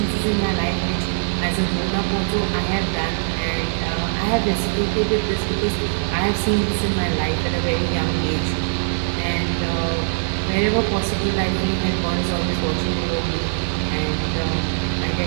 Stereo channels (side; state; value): left; silent; digital silence